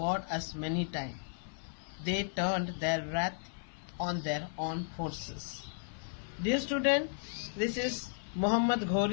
as many times. They turned their wrath on their own forces. Dear student, this is Muhammad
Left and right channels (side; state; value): right; silent; 55 dB below the other